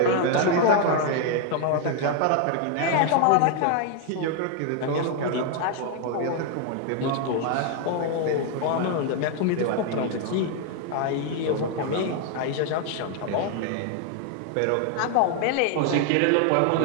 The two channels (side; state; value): both; different; correlation 0.00